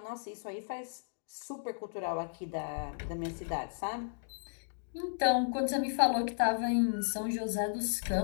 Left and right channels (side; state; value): right; silent; digital silence